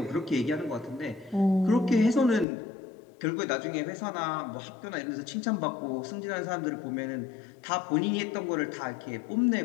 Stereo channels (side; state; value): right; drops out; at 2.5 s